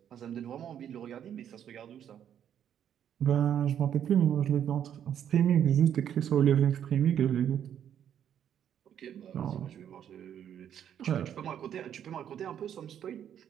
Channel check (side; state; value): left; quieter; 9.5 dB